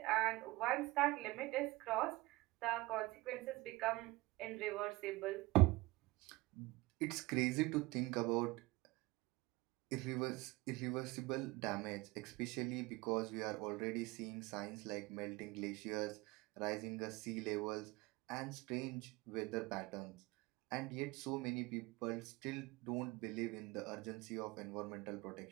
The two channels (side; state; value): left; quieter; 21.4 dB